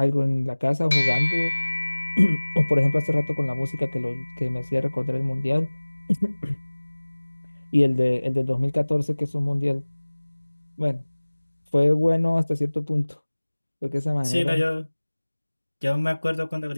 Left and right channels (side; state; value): both; inverted; correlation -1.00